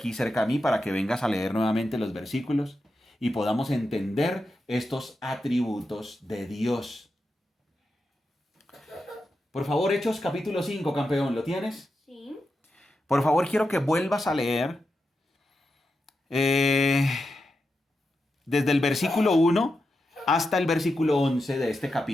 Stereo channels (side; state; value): both; normal; correlation 0.88